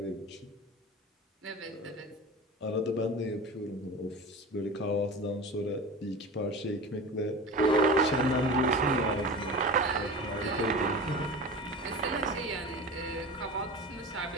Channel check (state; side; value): normal; both; correlation 0.32